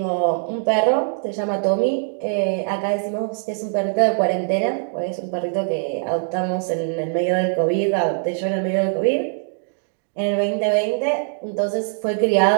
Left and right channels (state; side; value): silent; left; digital silence